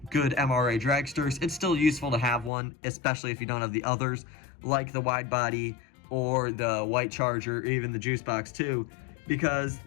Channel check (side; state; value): right; drops out; at 2.5 s